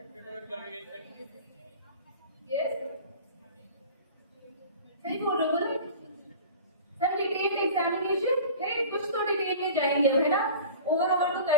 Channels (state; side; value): inverted; both; correlation -0.39